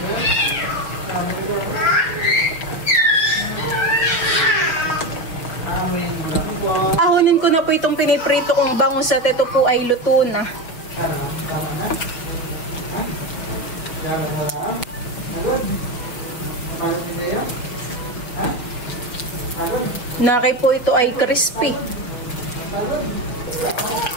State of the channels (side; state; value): right; late; 6.1 ms